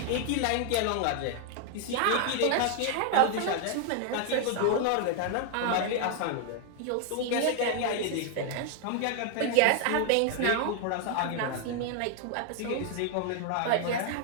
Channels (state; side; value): different; both; correlation 0.00